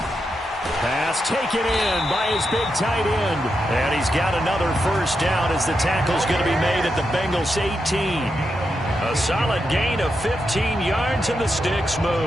Pass taken in by his big tight end. And he's got another first down as the tackle's going to be made at the Bengals 18. A solid gain of 15 yards, and the sticks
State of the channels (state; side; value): normal; both; correlation 0.85